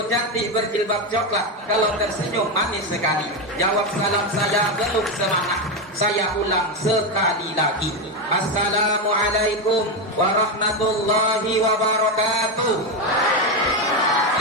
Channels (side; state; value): both; normal; correlation 0.10